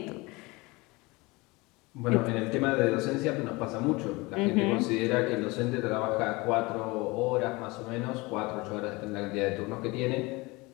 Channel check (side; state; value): right; quieter; 23.9 dB